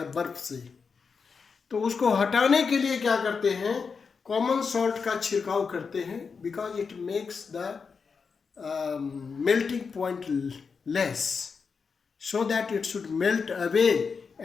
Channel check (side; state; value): right; quieter; 5.4 dB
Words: बर्फ से. तो उसको हटाने के लिए क्या करते हैं? कॉमन सॉल्ट का छिड़काव करते हैं, because it makes the melting point less, so that it should melt away